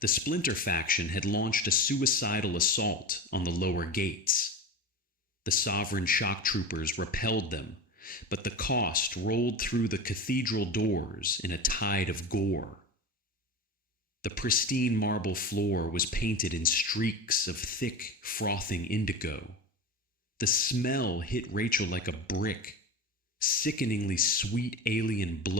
The Splinter faction had launched a suicidal assault on the lower gates. The Sovereign shock troopers repelled them, but the cost rolled through the cathedral doors in a tide of gore. The pristine marble floor was painted in streaks of thick, frothing indigo. The smell hit Rachel like a brick. Sickeningly sweet alien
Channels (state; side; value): normal; both; correlation 0.27